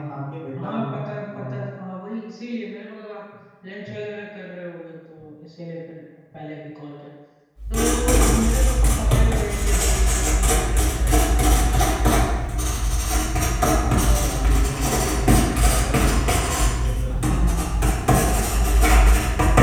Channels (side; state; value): both; identical; correlation 1.00